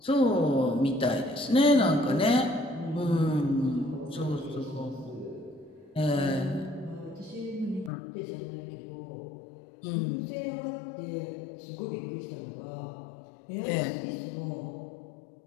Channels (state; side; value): drops out; right; at 7.9 s